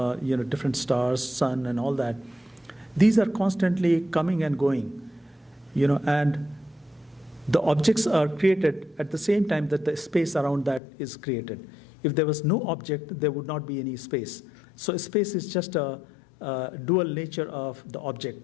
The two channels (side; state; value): right; drops out; at 10.8 s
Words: different stars, sun and all that, these are constantly coming and going, and the objects are created at the same time that the space around that is created. If there was no object, there would not be any space. So space is just a dual nature of the